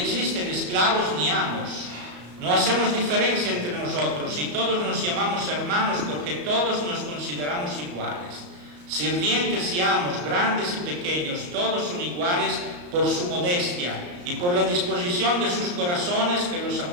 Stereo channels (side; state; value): left; late; 34 ms